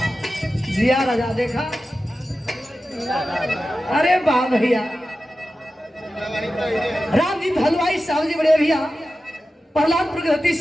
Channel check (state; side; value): normal; both; correlation 0.93